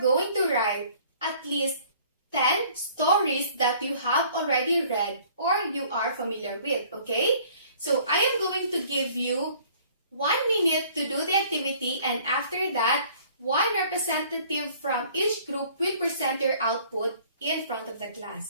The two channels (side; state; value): both; inverted; correlation -0.55